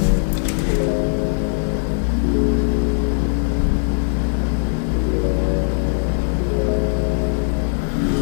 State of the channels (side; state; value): right; silent; digital silence